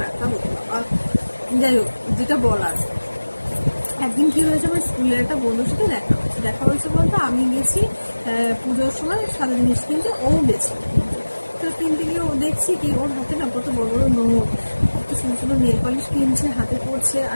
ব্যথা হতো বাবা। যাই হোক, যেটা বলার, একদিন কি হয়েছে, আমার স্কুলের একটা বন্ধুর সাথে দেখা হয়েছে বলতে আমি গেছি পুজোর সময় সাদা জিনিস কিনতে, ও গেছে কিনতে। তো কিনতে গিয়ে ও দেখছি কি ওর হাতে না কত বড় বড় নোট, কত সুন্দর সুন্দর নেল পালিশ কিনছে, হাতে পড়ছে,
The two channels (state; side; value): inverted; both; correlation -1.00